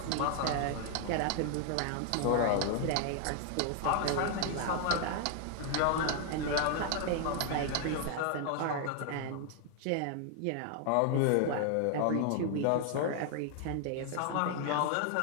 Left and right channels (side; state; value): both; different; correlation 0.00